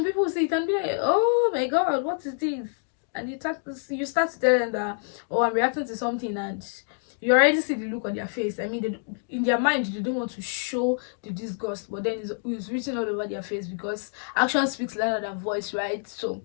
people see it and be like, oh my god, what is this? And you start to tell them that, oh, I'm reacting to something, and you already see the look on their face. I mean, in their mind, they don't want to show the disgust, but then it's written all over their face, because action speaks louder than voice, right? So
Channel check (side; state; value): right; silent; 60 dB below the other